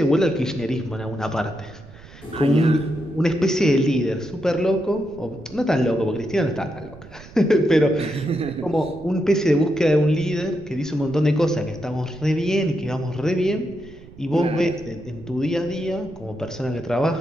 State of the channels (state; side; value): noise; right; rumble, 20 dB below the sound